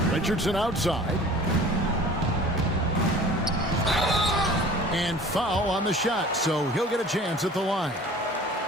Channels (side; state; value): both; normal; correlation 0.44